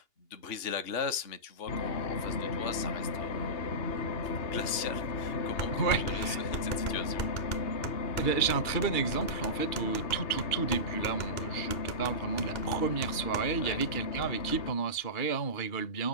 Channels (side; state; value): right; late; 2.8 ms